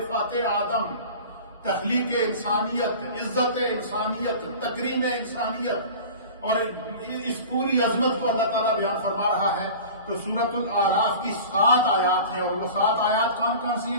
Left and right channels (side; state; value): both; inverted; correlation -0.38